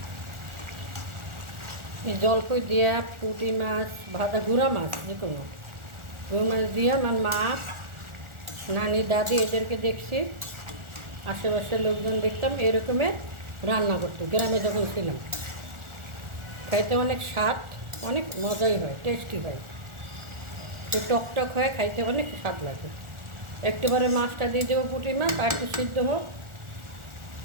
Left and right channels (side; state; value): left; late; 1.4 ms